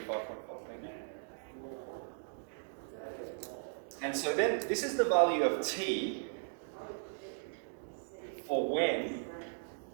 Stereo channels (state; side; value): silent; left; digital silence